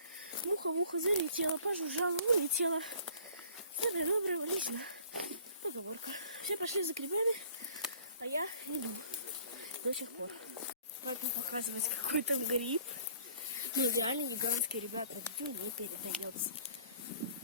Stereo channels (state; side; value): inverted; both; correlation -0.53